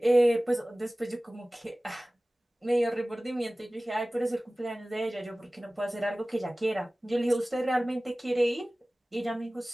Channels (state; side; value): normal; both; correlation 0.98